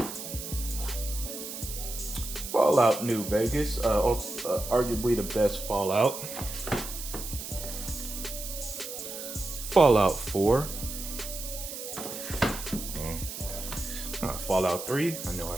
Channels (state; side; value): noise; right; hiss, 8 dB below the sound